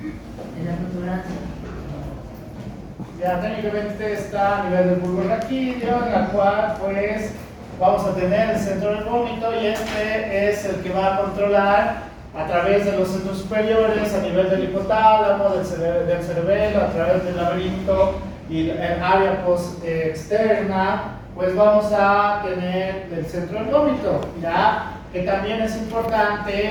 En la protuberancia. Ya técnicamente está a nivel del bulbo raquídeo, en la cual pues vamos a tener el centro del vómito, y este es el que va a controlar a través de los centros superiores, a nivel del hipotálamo, del cerebelo, a través del laberinto y el área externa, pues vamos a tener el centro del vómito, ¿ya? Que también es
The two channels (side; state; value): both; identical; correlation 1.00